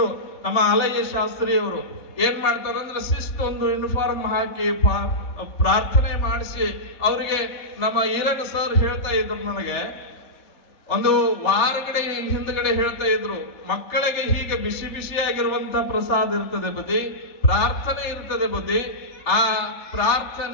ನಮ್ಮ ಆಲಯ್ಯ ಶಾಸ್ತ್ರಿಯವರು ಏನ್ ಮಾಡ್ತಾರಂದ್ರೆ ಒಂದು ಯೂನಿಫಾರ್ಮ್ ಹಾಕಿ ಪ್ರಾರ್ಥನೆ ಮಾಡಿಸಿ ಅವರಿಗೆ ನಮ್ಮ ಈರಗ ಸರ್ ಹೇಳ್ತಾ ಇದ್ರು, ನನಗೆ ಒಂದು ವಾರಗಡೆ ಹಿಂದ್ಗಡೆ ಹೇಳ್ತಾ ಇದ್ರು, ಮಕ್ಕಳಿಗೆ ಹೀಗೆ ಬಿಸಿ ಬಿಸಿಯಾಗಿರುವಂತ ಪ್ರಸಾದ ಇರ್ತದೆ ಬದಿ, ಪ್ರಾರ್ಥನೆ ಇರ್ತದೆ ಬದಿ. ಆ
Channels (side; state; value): right; late; 3.2 ms